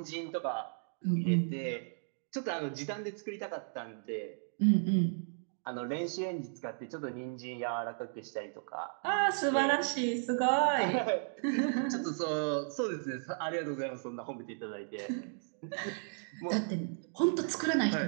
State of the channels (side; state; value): left; silent; digital silence